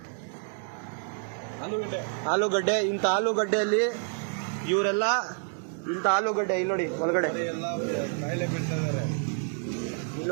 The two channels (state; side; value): silent; left; 59 dB below the other